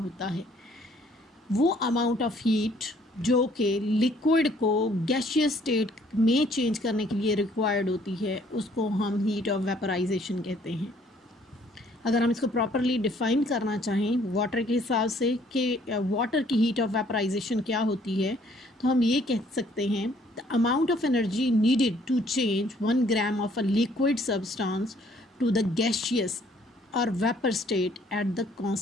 है। वो अमाउंट ऑफ हीट जो कि लिक्विड को गैसियस स्टेट में चेंज करने के लिए रिक्वायर्ड होती है, उसको हम हीट ऑफ वेपराइजेशन कहते हैं। अगर हम इसको प्रॉपरली डिफ़ाइन करना चाहें वाटर के हिसाब से कि वाटर की हीट ऑफ वेपराइजेशन क्या होती है, तो हम ये कह सकते हैं, the amount of energy needed to change 1 gram of a liquid substance to the gaseous और vapour state at the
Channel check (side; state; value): both; normal; correlation 0.62